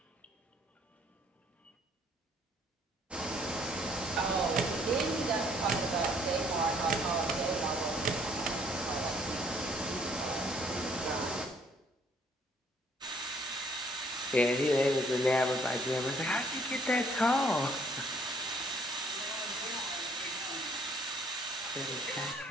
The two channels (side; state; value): both; normal; correlation 0.62